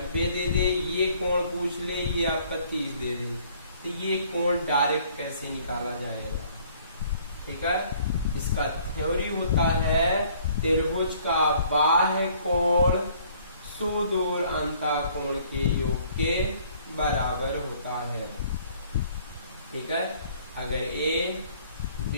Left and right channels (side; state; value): both; inverted; correlation -0.59